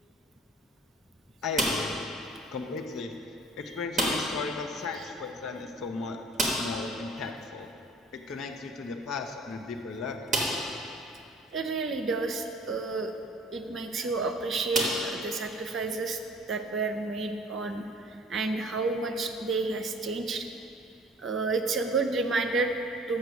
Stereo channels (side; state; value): both; normal; correlation 0.50